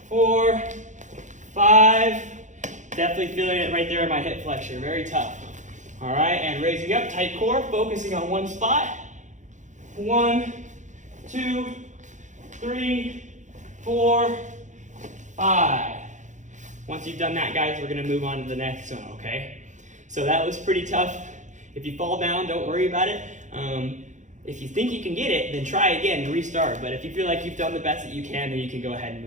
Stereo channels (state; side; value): late; left; 0.35 ms